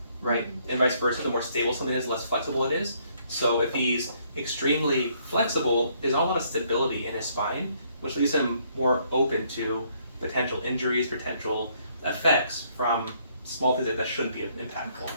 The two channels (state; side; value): inverted; both; correlation -0.68